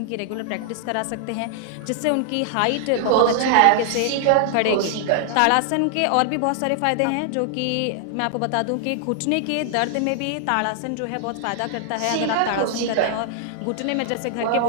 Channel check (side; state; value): both; different; correlation 0.00